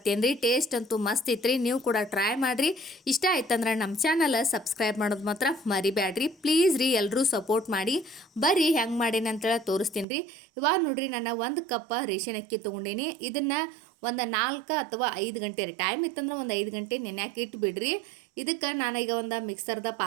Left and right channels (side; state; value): left; drops out; at 10.1 s